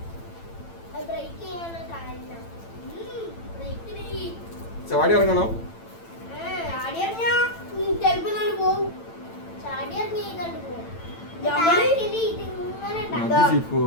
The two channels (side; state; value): right; late; 8.9 ms